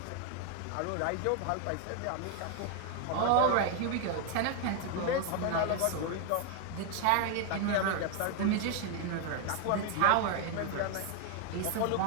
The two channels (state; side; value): different; both; correlation 0.01